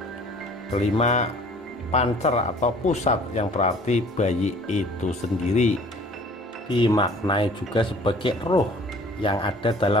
Kelima, pancer atau pusat yang berarti bayi itu sendiri. Dimaknai juga sebagai roh yang ada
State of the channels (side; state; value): both; normal; correlation 0.51